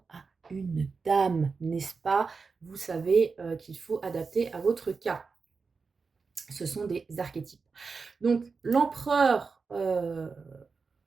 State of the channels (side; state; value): left; quieter; 4.8 dB